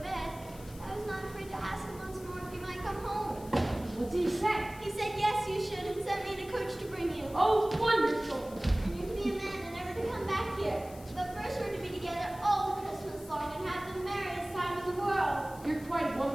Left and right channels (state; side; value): noise; left; hiss, 20 dB below the sound